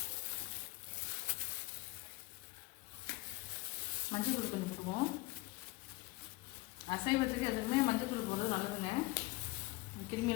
மஞ்சள் தூள் கொஞ்சம் போடுவோம். அசைவத்துக்கு எதுக்குமே மஞ்சள் தூள் போடுறது நல்லதுங்க.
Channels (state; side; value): quieter; right; 22.6 dB